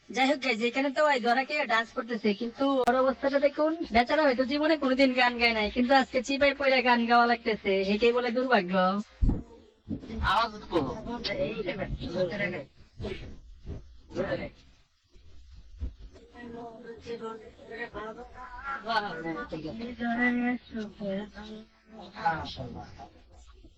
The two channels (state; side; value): identical; both; correlation 1.00